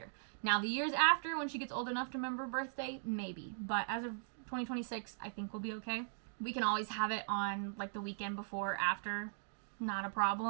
Now, the years after, when she gets old enough to remember her birthday, maybe. But as of 2026, I think we'll be okay. We can always have it on, like, the weekend before, after. Not a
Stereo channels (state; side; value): silent; left; digital silence